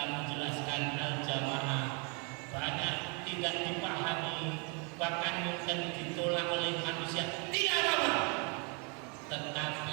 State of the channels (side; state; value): left; quieter; 34.4 dB